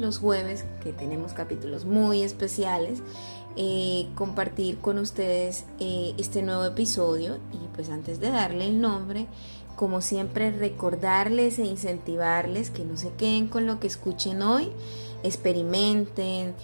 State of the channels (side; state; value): both; inverted; correlation -1.00